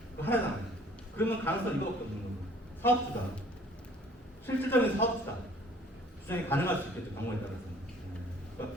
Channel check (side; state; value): both; normal; correlation 0.55